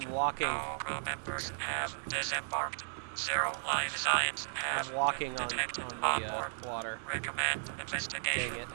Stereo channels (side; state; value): left; silent; digital silence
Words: I'm walking. No crew members have disembarked. Zero life signs have I'm walking been on detected the onboard. water. Recommend Dang investigation. it.